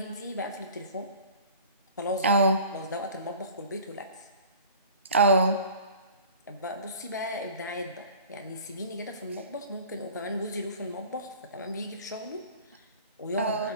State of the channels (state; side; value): inverted; both; correlation -0.45